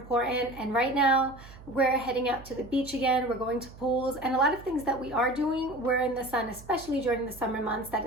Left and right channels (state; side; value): noise; right; hum, 19 dB below the sound